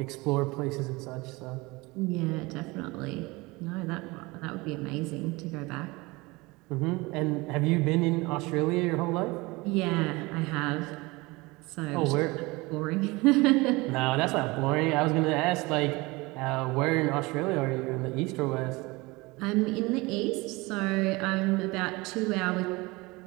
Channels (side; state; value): left; quieter; 23.4 dB